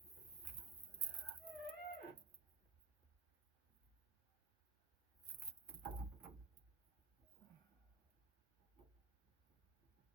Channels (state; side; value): quieter; left; 4.4 dB